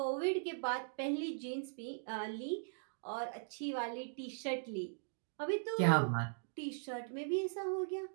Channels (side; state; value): left; silent; digital silence